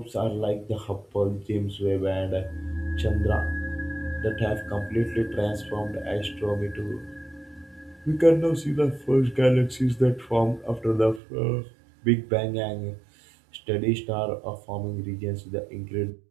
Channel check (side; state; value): left; drops out; at 11.2 s